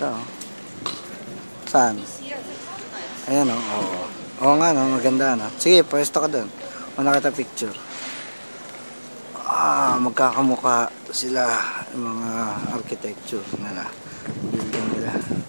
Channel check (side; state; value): both; inverted; correlation -1.00